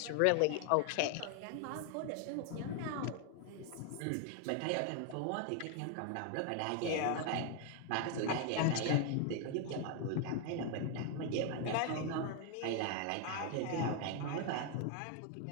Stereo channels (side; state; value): both; different; correlation 0.01